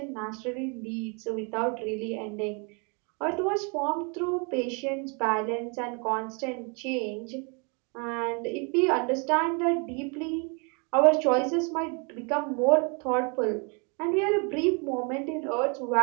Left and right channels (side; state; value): left; quieter; 34.2 dB